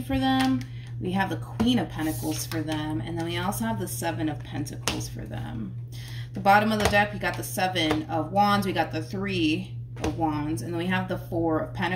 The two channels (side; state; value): both; identical; correlation 1.00